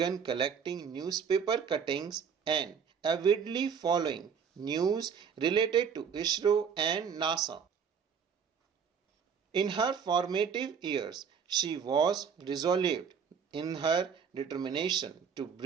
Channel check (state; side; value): quieter; left; 6.8 dB